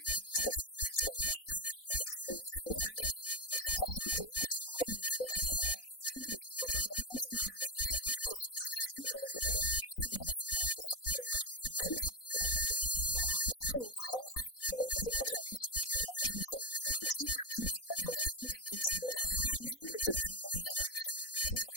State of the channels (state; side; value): late; right; 4.0 ms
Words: Prize Patrol has been out and about presenting this year's Earth Day Awards to some groups and individuals who are leading the way with programs and projects that emphasize sustainability, waste reduction, recycling, and litter control. Earth Day was first celebrated April 22, 1970 in 2,000 colleges, 10,000 schools, and hundreds of communities across the United